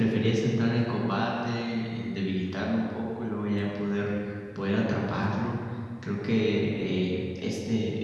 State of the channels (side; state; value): both; identical; correlation 1.00